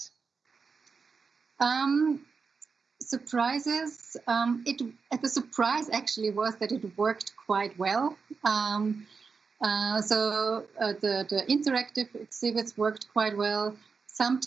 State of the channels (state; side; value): quieter; left; 5.1 dB